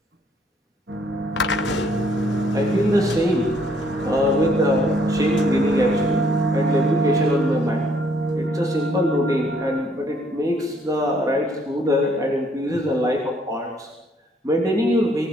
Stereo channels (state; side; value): normal; both; correlation 0.66